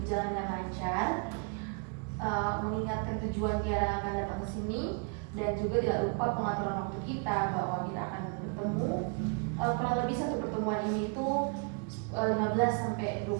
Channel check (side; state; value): left; quieter; 36.2 dB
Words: berjalan dengan lancar. Mengingatkan tujuan Tiara akan datang ke sini, dan juga tidak lupa pengaturan waktu kita bahwa kita akan bertemu kurang lebih satu pertemuan ini tuh 15-20